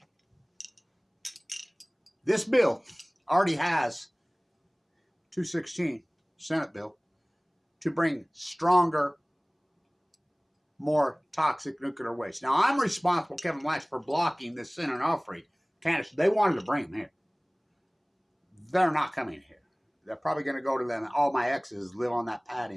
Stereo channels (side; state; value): both; identical; correlation 1.00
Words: This bill already has 216 Senate bill to bring stronger, more toxic nuclear waste. Now, I'm responsible, Kevin Latch, for blocking this Senate Onofre candidates. They wanted to bring them here. They're not coming here. They're probably going to go to them. All my exes live on that pad